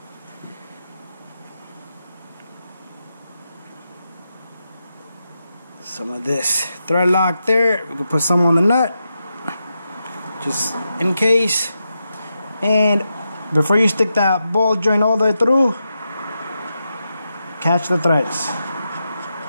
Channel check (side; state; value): both; inverted; correlation -0.87